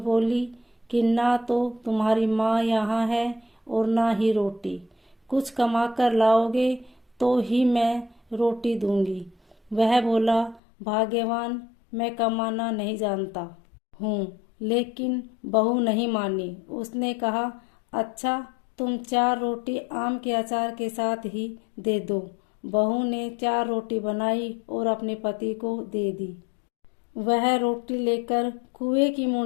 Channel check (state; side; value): drops out; right; at 10.6 s